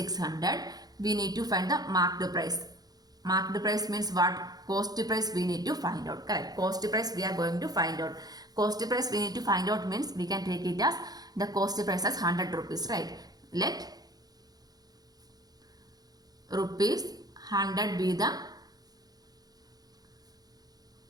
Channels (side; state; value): left; late; 0.19 ms